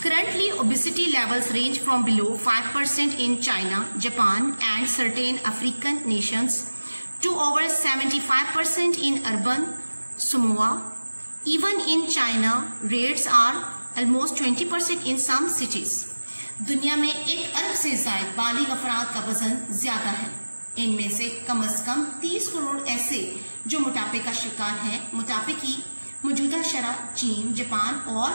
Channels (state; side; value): inverted; both; correlation -1.00